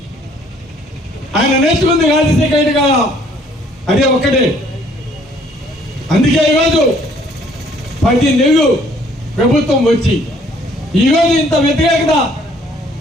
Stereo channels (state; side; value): normal; both; correlation 0.61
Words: ఆయన నేర్చుకుంది రాజశేఖర రెడ్డి గారు అదే ఒక్కటే. అందుకే ఈరోజు 10 నెలలు ప్రభుత్వం వచ్చి ఈరోజు ఇంత వ్యతిరేకత